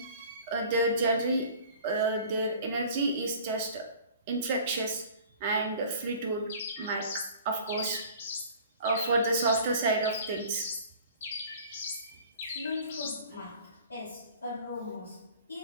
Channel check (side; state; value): both; inverted; correlation -0.46